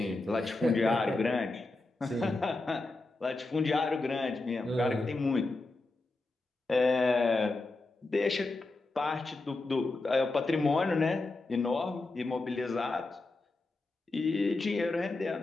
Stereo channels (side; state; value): right; quieter; 3.2 dB